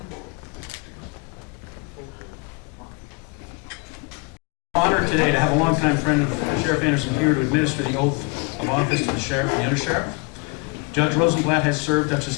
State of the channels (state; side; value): quieter; right; 30.6 dB